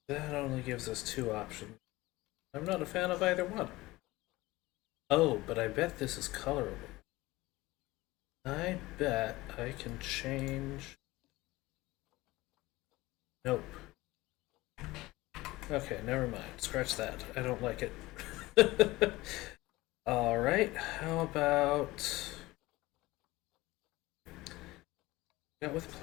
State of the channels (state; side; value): quieter; right; 19.7 dB